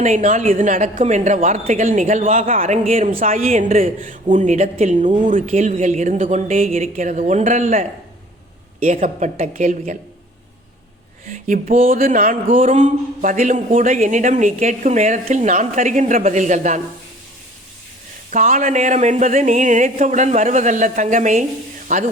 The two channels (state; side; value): normal; both; correlation 0.50